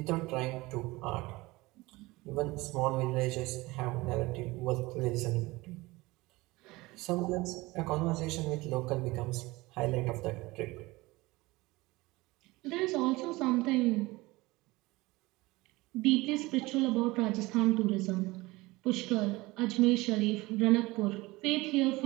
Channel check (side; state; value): left; quieter; 21.3 dB